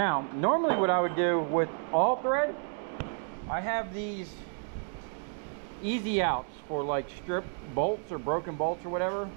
normally what I would do with all thread, I have these easy outs for like strip bolts or broken bolts or whatever.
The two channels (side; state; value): left; silent; 56 dB below the other